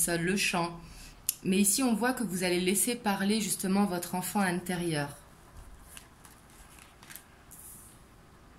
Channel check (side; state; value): both; identical; correlation 1.00